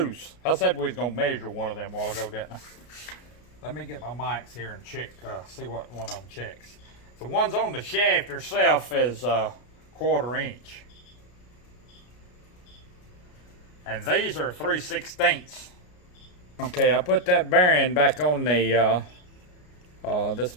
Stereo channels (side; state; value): right; late; 33 ms